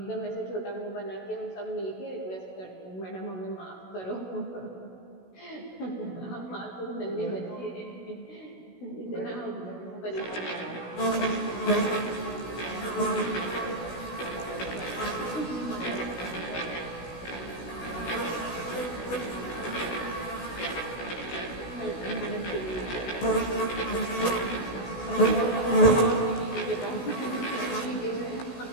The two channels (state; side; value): late; right; 16 ms